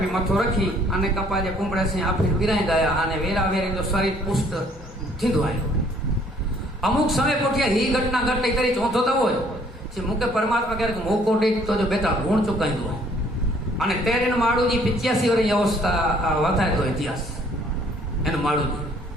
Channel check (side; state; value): both; normal; correlation 0.61